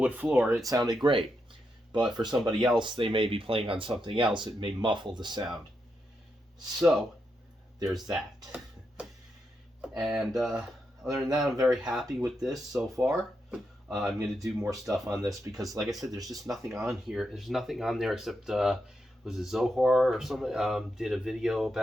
floor. It sounded great. But for somebody else, they may be playing on something else. It may muffle the sound. So, there's that. And other than that, I'm very happy with this so far. I'm going to do more stuff on this because, like I said, there's just nothing on here. There's nothing on there except, was it Zohar or something? Did a video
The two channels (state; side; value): normal; both; correlation 0.84